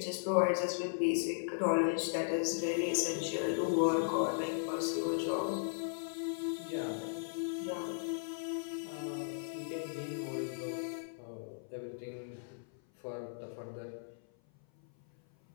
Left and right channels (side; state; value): right; silent; 53 dB below the other